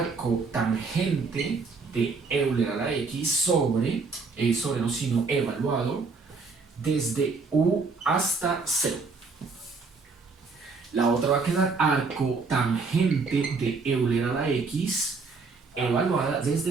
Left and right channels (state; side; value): quieter; left; 4.4 dB